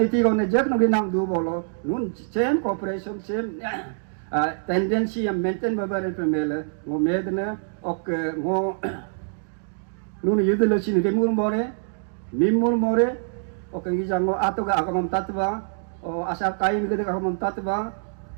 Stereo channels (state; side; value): silent; left; digital silence